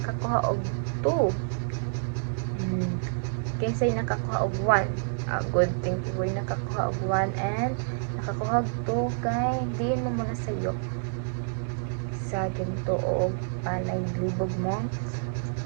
og 2. Kisay nakakuha og 1. Good thing you nakakuha og 1 and nakakuha og 2 kay diin mo muna sayo sa ginto og palay libog mo.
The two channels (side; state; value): left; silent; digital silence